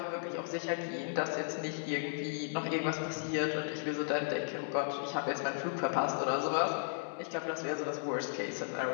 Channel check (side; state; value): right; silent; digital silence